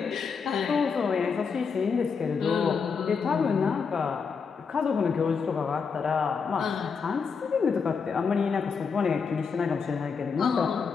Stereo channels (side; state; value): right; quieter; 5.7 dB